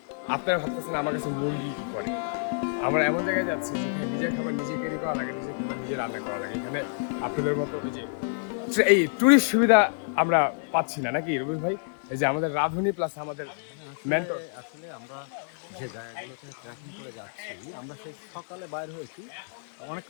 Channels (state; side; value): silent; right; digital silence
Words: আপনারা ভাবতেছেন আমার কাছে মুরগি কি করে? আমরা এমন জায়গায় যাচ্ছি যেখানে নিজের খাবার নিজে ক্যারি করা লাগে, নিজের খাবার নিজে রান্না করা লাগে। এখানে আপনাদের মতো ওই যে এই টুরিস্ট সুবিধা আমরা পাচ্ছি না, নাকি রবি ভাই? এই যে আমাদের রাঁধুনি প্লাস আমাদের মেন্টর। আসলে আমরা যে জায়গাগুলোতে ট্রেকিং করে যাচ্ছি, আমরা সেই সকালে বাইর হয়েছি,